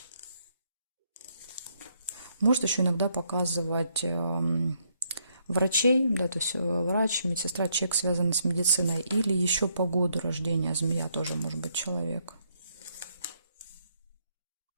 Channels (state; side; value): inverted; both; correlation -0.73